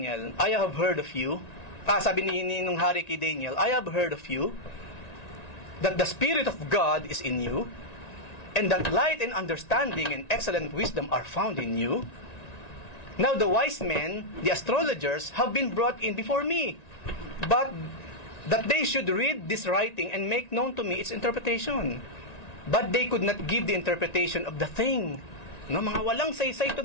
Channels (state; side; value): late; right; 1.9 ms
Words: I have heard of you. Sabi nung hari kay Daniel, I have heard of you, that the Spirit of God is in you, and that light and understanding and excellent wisdom are found in you. Now the wise men, the astrologers, have been brought in before me, but that they should read this writing and make known to me its interpretation. But they could not give the interpretation of the thing. No, mga walang saysay ito,